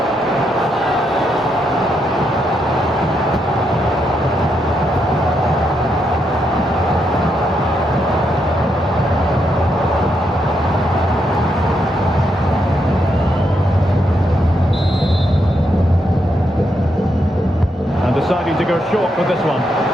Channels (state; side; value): normal; both; correlation 0.79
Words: Deciding to go short with this one.